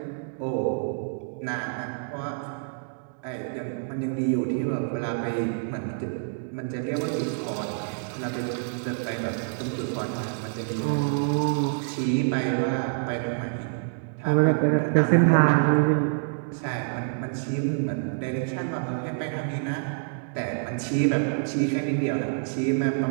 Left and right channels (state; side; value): silent; left; digital silence